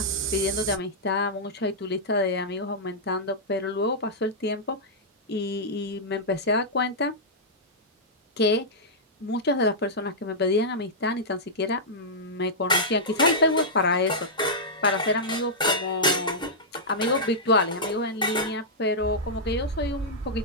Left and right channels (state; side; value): normal; both; correlation -0.10